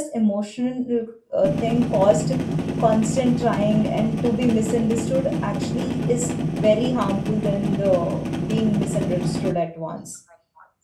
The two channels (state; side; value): identical; both; correlation 1.00